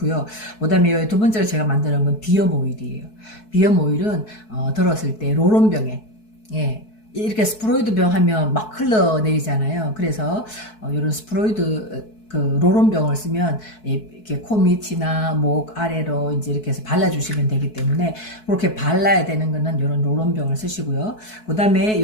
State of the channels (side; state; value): right; late; 4.6 ms